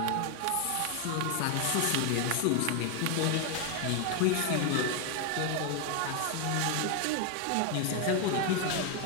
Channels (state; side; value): different; both; correlation 0.01